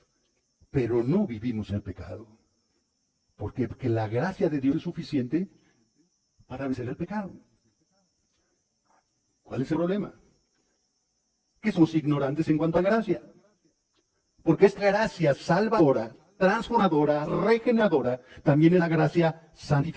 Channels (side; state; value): both; identical; correlation 1.00